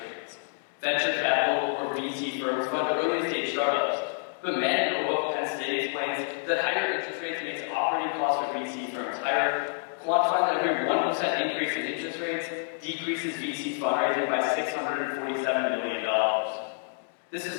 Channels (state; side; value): silent; right; digital silence